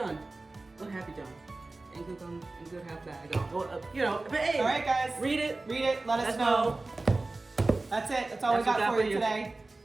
What have you done? And good half bad. Well, you know, but hey. All right, guys. Read it. Let us know. That's it. That's all we That's what got for you today.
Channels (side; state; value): left; quieter; 3.2 dB